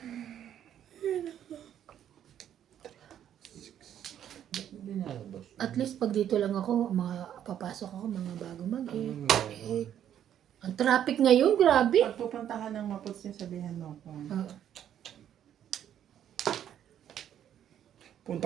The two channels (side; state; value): left; quieter; 10.2 dB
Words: hindi nalabas. At least pag dito lang ako, mga papasok ako, mga bago mag-8. Ang traffic ngayon, grabe. Pag pupunta ka ng Maputs niya, sabihan mo ako. Oo.